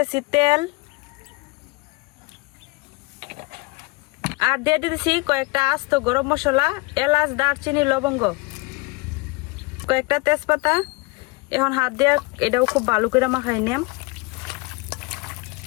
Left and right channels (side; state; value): right; quieter; 25.2 dB